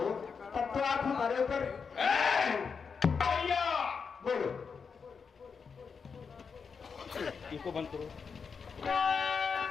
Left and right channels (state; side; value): quieter; right; 5.7 dB